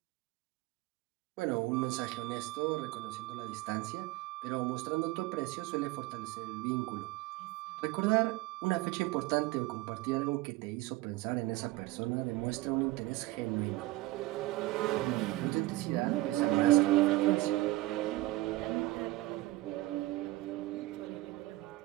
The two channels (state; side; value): quieter; left; 18.5 dB